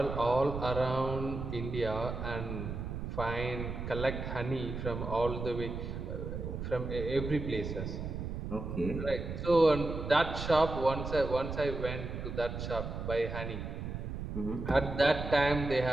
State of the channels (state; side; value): noise; right; rumble, 5 dB below the sound